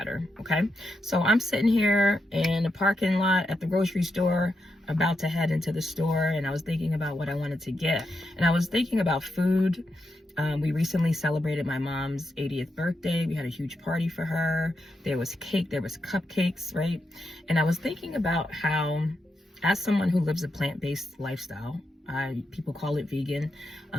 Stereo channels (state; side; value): normal; both; correlation 0.84